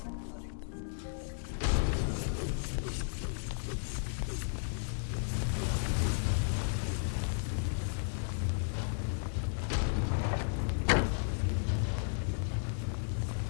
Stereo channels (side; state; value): right; silent; digital silence